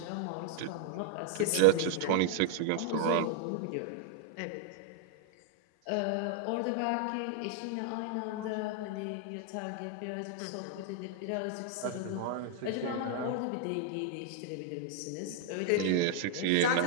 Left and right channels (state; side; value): different; both; correlation 0.00